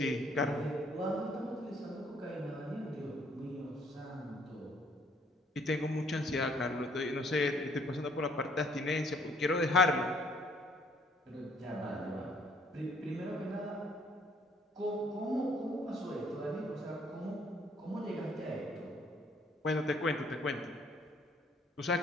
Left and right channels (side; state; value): both; normal; correlation 0.63